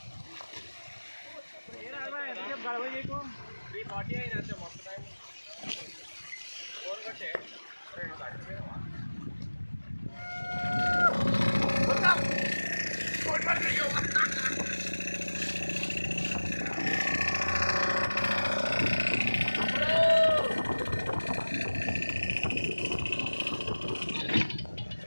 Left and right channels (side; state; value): both; inverted; correlation -1.00